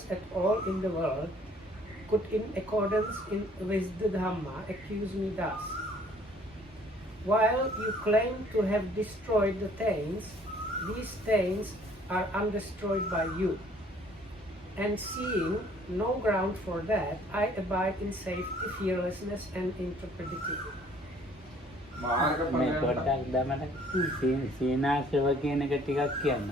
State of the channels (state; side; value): normal; both; correlation 0.58